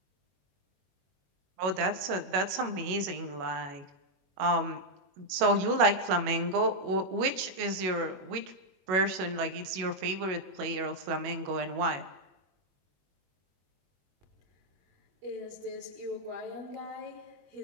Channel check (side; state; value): left; late; 21 ms